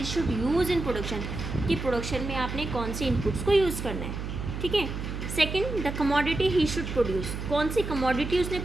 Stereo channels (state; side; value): noise; right; hum, 6 dB below the sound